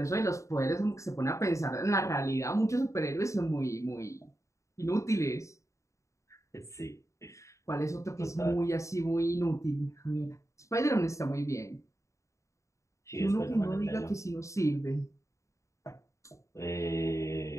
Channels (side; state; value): right; late; 0.15 ms